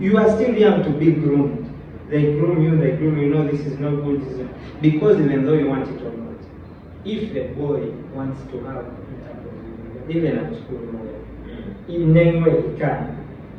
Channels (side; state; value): both; identical; correlation 1.00